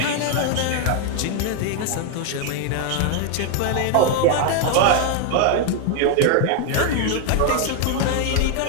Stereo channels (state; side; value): different; both; correlation 0.01